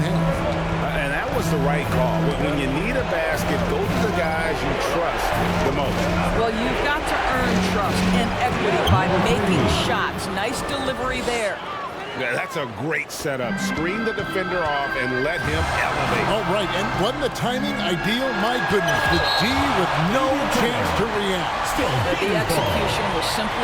And that was the right call. When you need a basket, go to the guys you trust the most. Well, you've got to earn trust and equity by making shots. Nice delivery there. Yeah, that's a great setup. Screen the defender off and let him elevate. Oh, right. And wasn't the timing ideal? My goodness. The D with no chance to react. The execution was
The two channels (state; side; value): identical; both; correlation 1.00